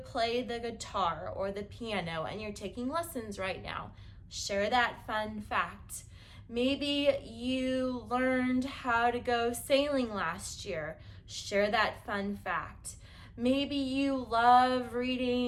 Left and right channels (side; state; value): both; identical; correlation 1.00